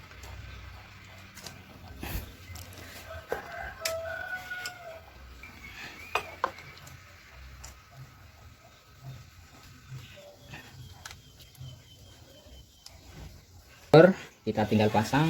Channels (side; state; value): both; identical; correlation 1.00